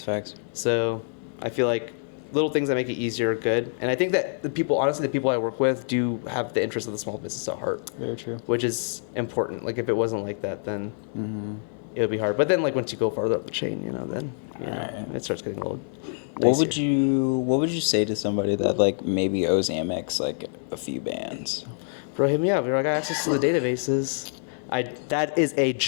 facts. So I feel like little things that make it easier are good. And I think that the people I work with do have the interest of the small business at heart. Very true. Which is important. Like if it wasn't like that, then it would be hard. But then like once you go farther up the chain, then it starts getting a little dicier. What would you say to somebody that like maybe owes Amex like a few bands? Bro, hit me up. I got access to the databases. That is a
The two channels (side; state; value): right; silent; 61 dB below the other